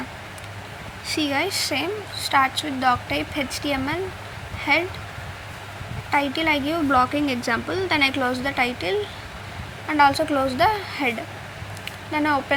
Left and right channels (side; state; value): both; identical; correlation 1.00